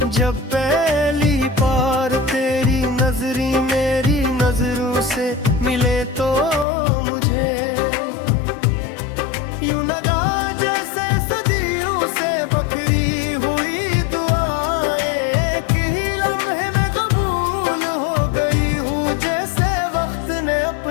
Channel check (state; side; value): drops out; right; at 6.7 s